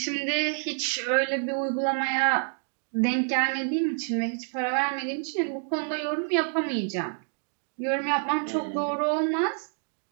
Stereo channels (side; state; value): left; silent; digital silence